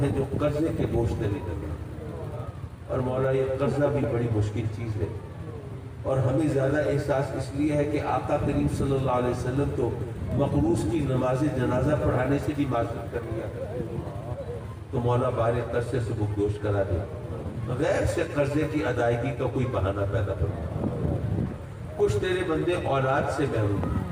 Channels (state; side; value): identical; both; correlation 1.00